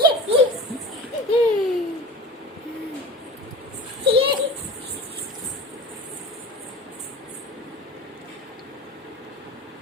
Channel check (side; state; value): both; normal; correlation 0.35